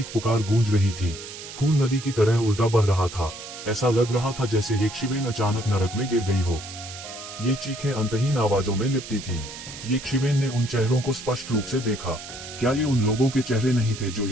पुकार गूंज रही थी। खून नदी की तरह उल्टा बह रहा था। ऐसा लग रहा था जैसे एक शिवेन अचानक नरक में गिर गई हो। ये चीखें अंतहीन आवाजों में लिपटी थी। ये शिवेन ने उन चेहरों को स्पष्ट रूप से देखा। क्या ये उन लोगों के चेहरे नहीं थे जो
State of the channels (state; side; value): noise; right; hiss, 12 dB below the sound